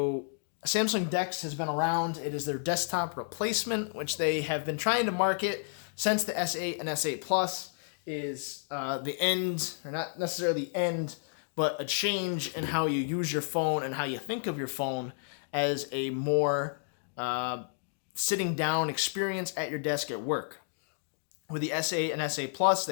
Samsung DeX has been around. It is their desktop replacement, which they have been trying to market since the S8 and S8 Plus is the end, or not necessarily the end, but a change in how you use your phone and how you think of your phone as a more sitting down experience at your desk at work. With the S8 and S8 Plus,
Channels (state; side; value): silent; right; digital silence